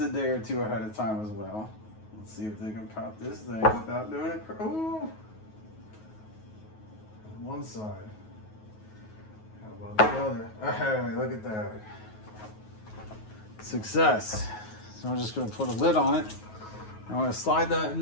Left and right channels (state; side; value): late; right; 9.4 ms